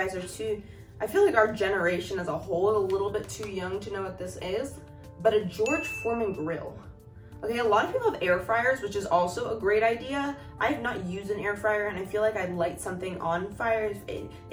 are I feel like our generation as a whole is a little bit too young to know what this is, but a George Foreman grill. Okay, a lot of people have air fryers, which is also a great idea. I have not used an air fryer, and I feel like I'd light something on fire. It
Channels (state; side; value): identical; both; correlation 1.00